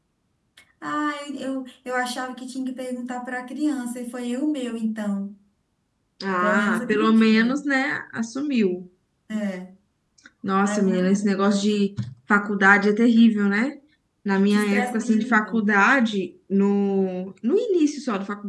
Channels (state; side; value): identical; both; correlation 1.00